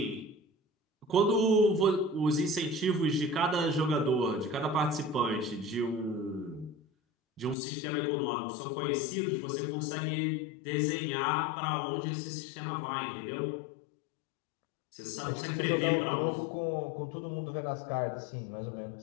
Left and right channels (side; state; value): right; drops out; at 7.6 s